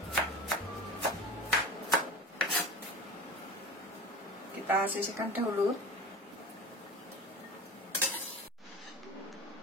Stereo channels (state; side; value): normal; both; correlation 0.35